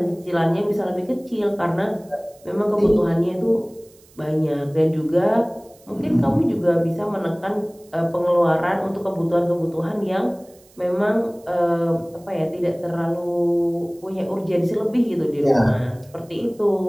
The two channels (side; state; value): right; noise; hiss, 28 dB below the sound